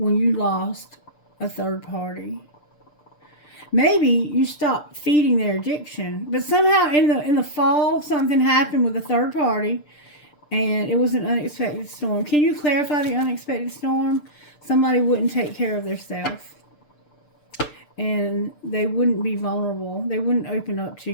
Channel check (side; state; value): right; late; 6.7 ms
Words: you lost a third party. Maybe you stopped feeding their addiction, but somehow in the fall something happened with a third party, and it was an unexpected storm. Can you clarify the unexpected storm? Somebody wouldn't take care of themselves, and they wouldn't be vulnerable. They wouldn't open up to